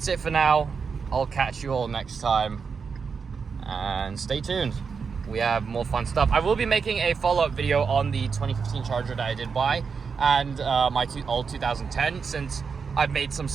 it for now. I'll catch you all next time, and stay tuned. We have more fun stuff. I will be making a follow-up video on the 2015 Charger that I did buy and my old 2010, since I've made some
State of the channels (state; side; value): quieter; left; 5.6 dB